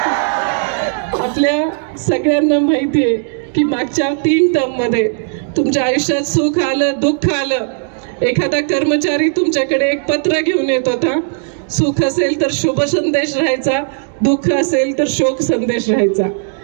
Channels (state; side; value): silent; left; digital silence